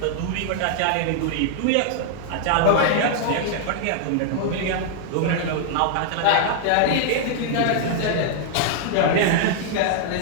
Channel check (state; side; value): different; both; correlation 0.00